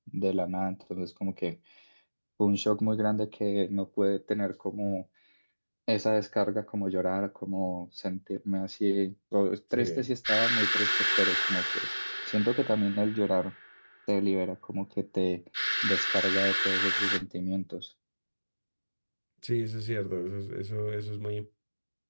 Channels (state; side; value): inverted; both; correlation -1.00